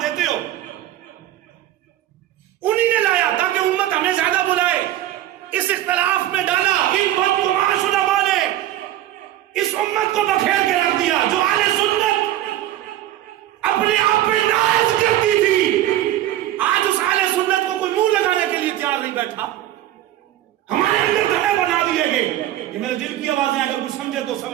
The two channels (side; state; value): left; quieter; 13.4 dB